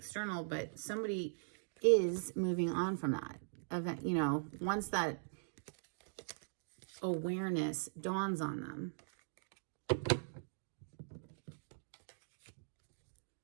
But somebody is moving on from that event, you know, once that awareness dawns on them.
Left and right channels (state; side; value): silent; left; digital silence